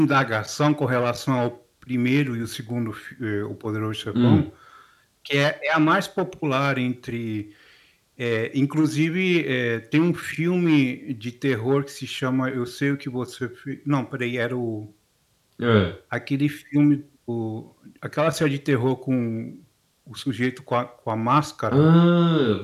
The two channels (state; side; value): identical; both; correlation 1.00